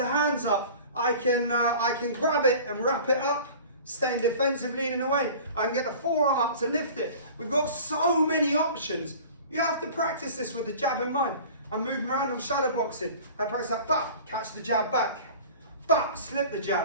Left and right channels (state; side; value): inverted; both; correlation -0.42